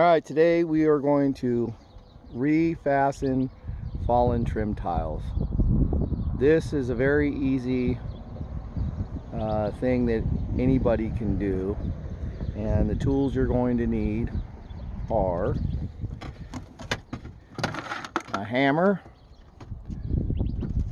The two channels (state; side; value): identical; both; correlation 1.00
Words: today we are going to refasten fallen trim tiles. This is a very easy thing that anybody can do, and the tools you're going to need are a hammer,